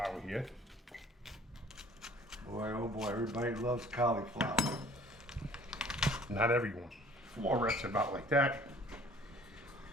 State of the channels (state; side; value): normal; both; correlation 0.52